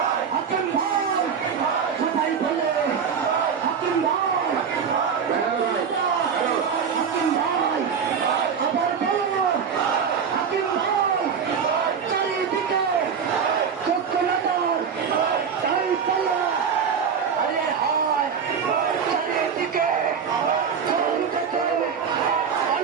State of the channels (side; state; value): left; quieter; 6.8 dB